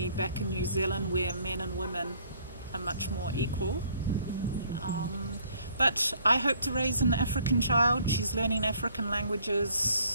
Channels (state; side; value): inverted; both; correlation -0.61